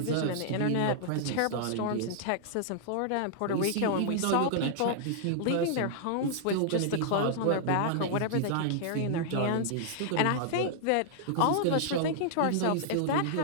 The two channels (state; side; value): different; both; correlation -0.01